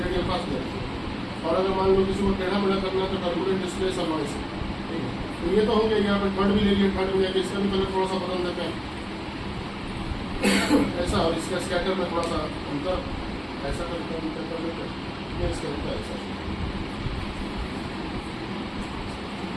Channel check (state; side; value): identical; both; correlation 1.00